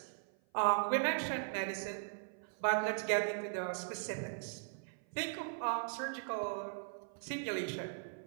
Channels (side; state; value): left; silent; 52 dB below the other